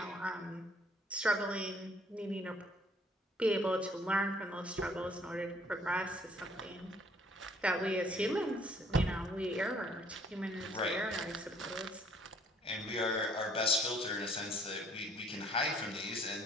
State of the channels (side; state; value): both; normal; correlation 0.60